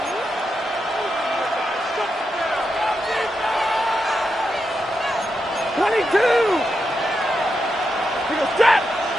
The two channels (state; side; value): normal; both; correlation 0.86